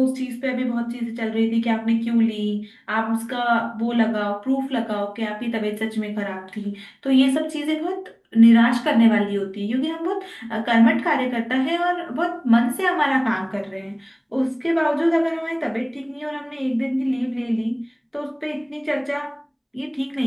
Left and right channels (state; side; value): identical; both; correlation 1.00